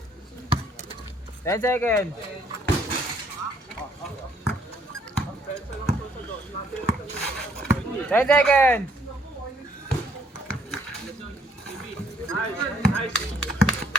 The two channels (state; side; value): normal; both; correlation 0.65